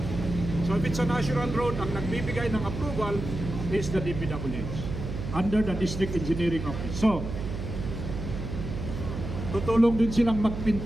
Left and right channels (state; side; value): noise; right; hum, 6 dB below the sound